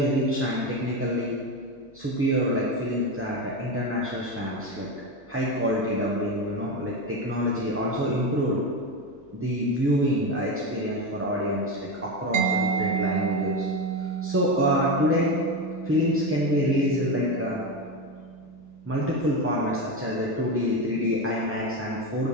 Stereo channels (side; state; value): left; noise; hum, 30 dB below the sound